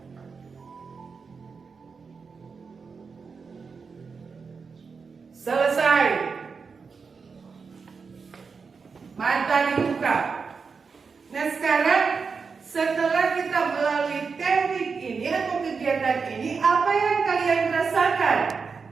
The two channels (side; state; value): left; quieter; 5.2 dB